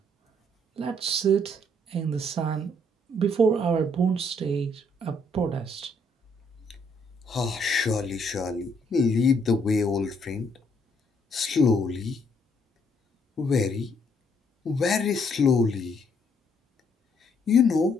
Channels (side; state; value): both; normal; correlation 0.69